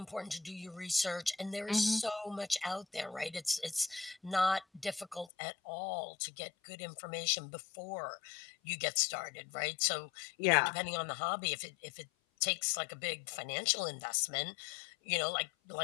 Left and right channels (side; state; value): right; drops out; at 5.3 s